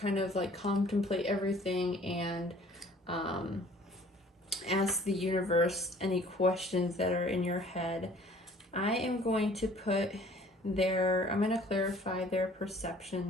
of like contemplate everything and ask the universe any questions that are in your head. I am going to I'm going to clarify their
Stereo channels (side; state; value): both; normal; correlation 0.53